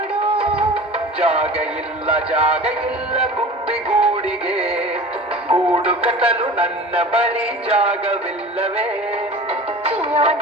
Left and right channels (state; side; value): normal; both; correlation 0.38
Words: ಜಾಗ ಇಲ್ಲ ಗುಬ್ಬಿಗೂಡಿಗೆ, ಗೂಡು ಕಟ್ಟಲು ನನ್ನ ಬಳಿ ಜಾಗವಿಲ್ಲವೇ? ಚಿಯೋ